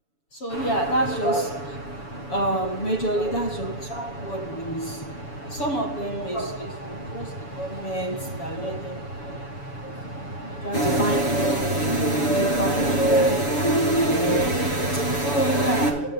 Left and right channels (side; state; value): right; late; 7.0 ms